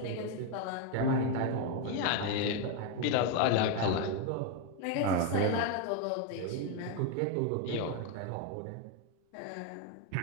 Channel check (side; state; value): both; different; correlation 0.01